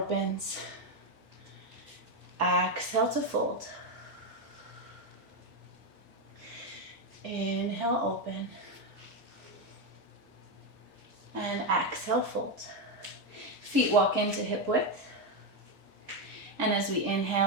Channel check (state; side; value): late; left; 1.8 ms